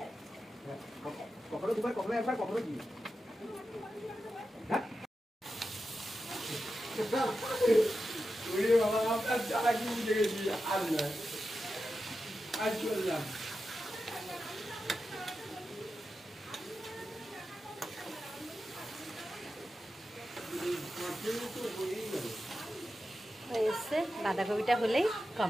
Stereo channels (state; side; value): normal; both; correlation 0.91